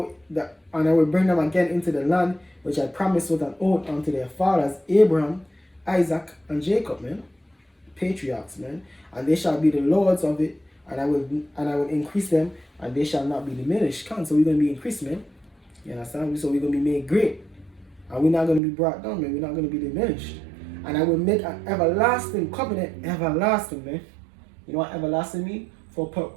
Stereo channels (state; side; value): drops out; left; at 18.6 s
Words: that, and I will bring them again into the land which I promised with an oath unto their fathers, Abraham, Isaac, and Jacob, man. Patriarchs, man. And they shall be the lords of it, and I will increase them, and they shall not be diminished. So we're gonna be increased, man. You understand? So we're gonna be made great. And we're not gonna be brought down, man. We're not gonna be diminished. And I will make an everlasting covenant, everlasting, man. You know what everlasting mean? For